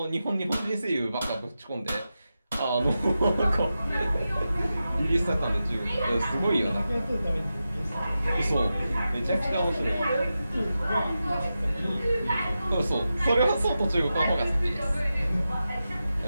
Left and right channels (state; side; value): inverted; both; correlation -0.91